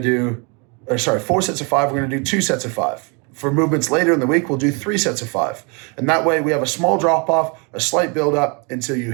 to do 2 sets of 5. For movements later in the week, we'll do 3 sets of 5. And that way we have a small drop off, a slight build up until you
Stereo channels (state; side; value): quieter; left; 32.9 dB